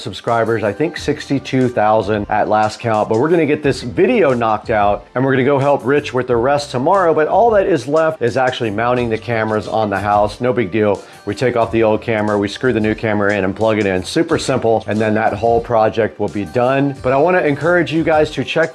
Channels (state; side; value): identical; both; correlation 1.00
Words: I think 62,000 at last count, but we're gonna get this video knocked out and we're gonna go help Rich with the rest tomorrow, but all that is left is actually mounting the cameras on the house. No big deal. We take off the old camera, we screw the new camera in and plug it in. Super simple, and then that whole project will be done. But I wanna encourage you guys to check